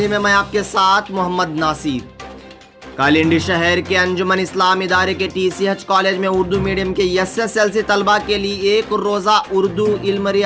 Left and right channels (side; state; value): both; identical; correlation 1.00